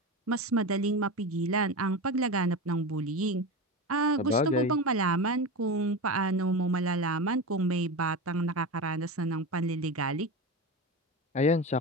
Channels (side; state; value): both; normal; correlation 0.23